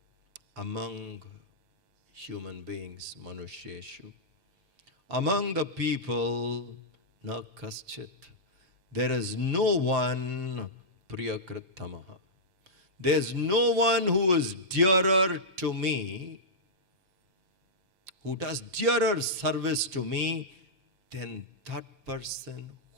among human beings, manusheshu, among the people, na kaschit, there is no one priyakritamaha. There's no one who is dearer to me, who does dearer service to me than that person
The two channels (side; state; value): left; late; 5.6 ms